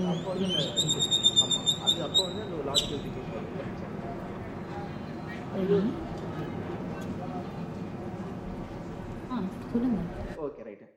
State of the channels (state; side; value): identical; both; correlation 1.00